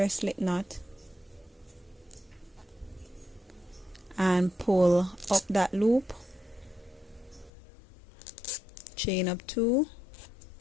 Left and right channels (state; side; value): drops out; right; at 7.5 s